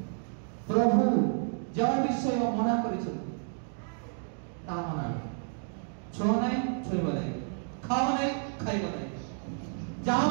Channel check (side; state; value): left; silent; 57 dB below the other